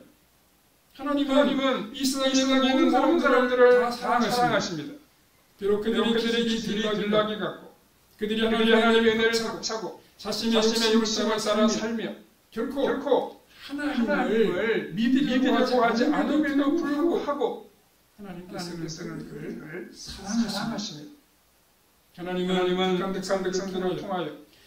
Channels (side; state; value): both; identical; correlation 1.00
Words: 하나님은 이 세상에 있는 모든 사람들을 다 사랑하십니다. 비록 그들이 들락이 같고 그들이 하나님의 은혜를 차고 자신의 욕심을 따라 살며 결코 하나님을 믿으려고 하지 않음에도 불구하고 하나님께서는 그들을 사랑하십니다. 하나님은 백성들을 통하여